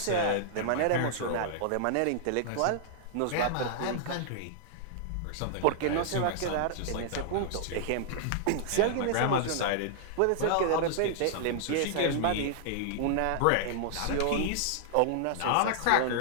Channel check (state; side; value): different; both; correlation -0.01